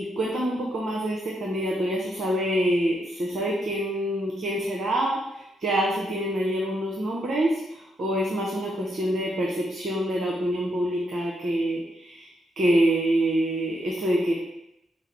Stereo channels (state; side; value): normal; both; correlation 0.78